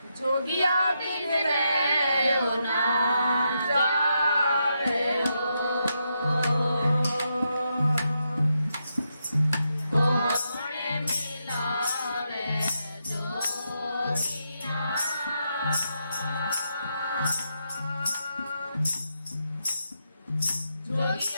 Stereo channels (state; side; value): inverted; both; correlation -0.83